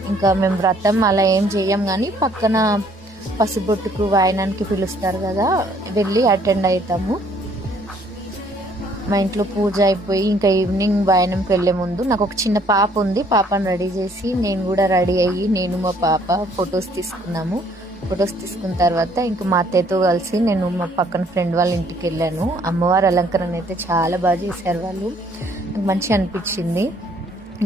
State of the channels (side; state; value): both; normal; correlation 0.62